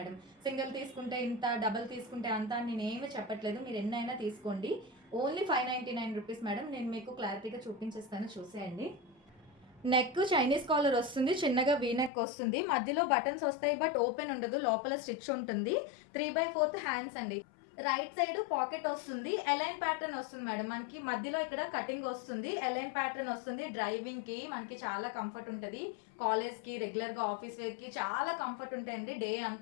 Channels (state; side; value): drops out; right; at 12.1 s